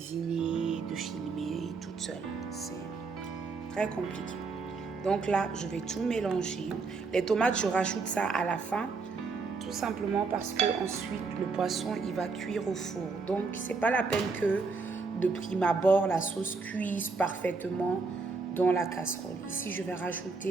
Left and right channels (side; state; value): left; quieter; 4.3 dB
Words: de filmer toute seule. C'est très compliqué. Donc là, je vais tout mélanger. Les tomates, je rajoute ça à la fin. Tout simplement parce que ensuite le poisson il va cuire au four. Donc c'est pas la peine que de prime abord la sauce cuise parfaitement dans la casserole. Ici je vais